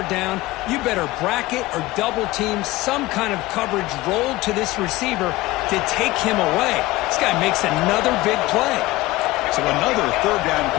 down, you better bracket or double team some kind of coverage rolled to this receiver to take him away. This guy makes another big play. So another third down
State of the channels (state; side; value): quieter; right; 19.0 dB